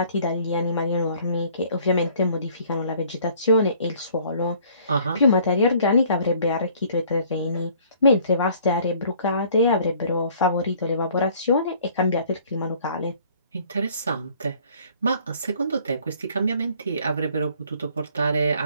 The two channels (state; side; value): inverted; both; correlation -0.57